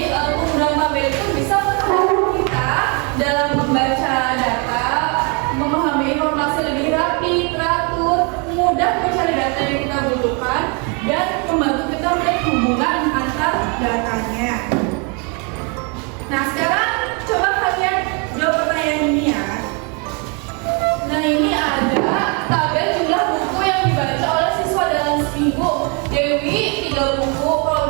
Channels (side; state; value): left; quieter; 33.9 dB